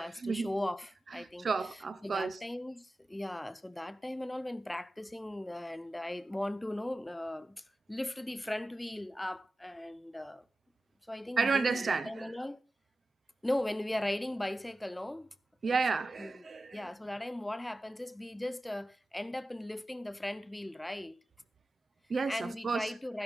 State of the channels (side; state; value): both; normal; correlation 0.94